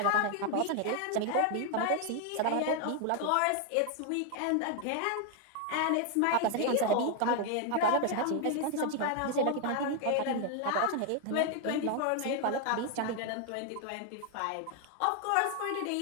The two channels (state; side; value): different; both; correlation 0.01